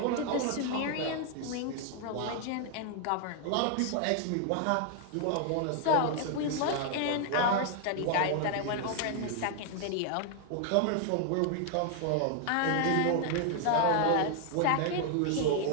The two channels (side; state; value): both; different; correlation 0.00